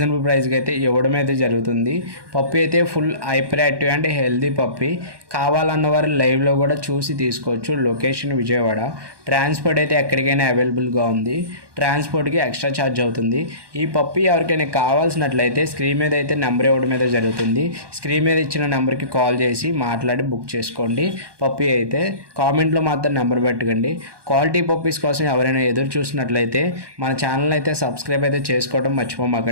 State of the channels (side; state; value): left; late; 1.2 ms